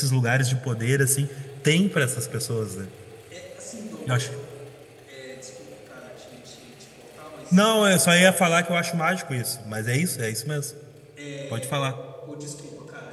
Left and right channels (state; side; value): identical; both; correlation 1.00